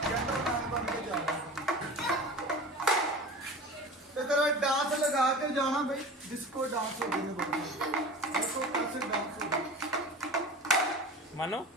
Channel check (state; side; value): normal; both; correlation 0.36